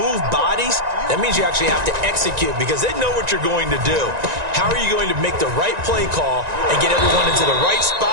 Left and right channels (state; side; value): late; left; 1.9 ms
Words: bodies, that means you actually have to execute because they know what you're going to do. How are you going to make the right play call and get everyone into the right